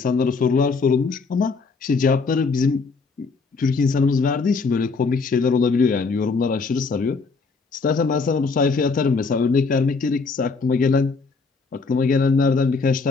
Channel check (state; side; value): quieter; right; 4.5 dB